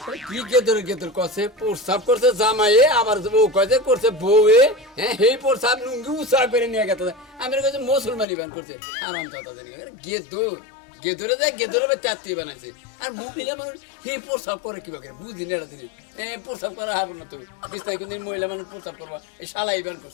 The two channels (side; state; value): right; drops out; at 8.2 s